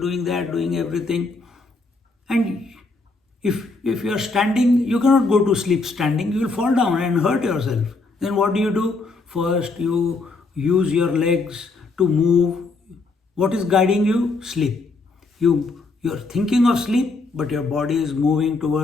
that, doing everything. And if you are standing, you cannot go to sleep standing, you will fall down and hurt yourself. Then what do? First, you use your legs to move. What is guiding you? Sleep. You're thinking of sleep, but your body is moving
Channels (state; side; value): quieter; right; 3.7 dB